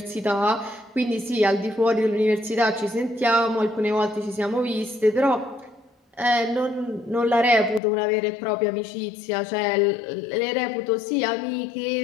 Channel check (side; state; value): right; drops out; at 7.8 s